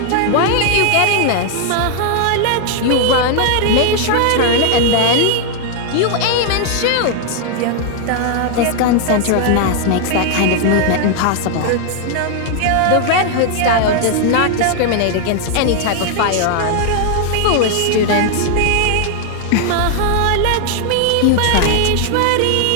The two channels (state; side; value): different; both; correlation 0.00